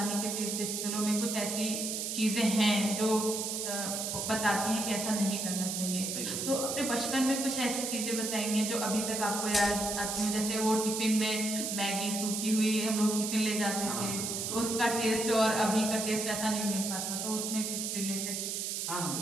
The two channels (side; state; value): right; noise; hiss, 2 dB below the sound